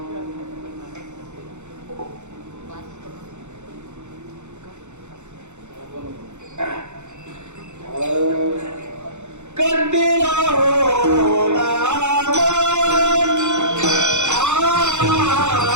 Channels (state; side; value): late; left; 0.83 ms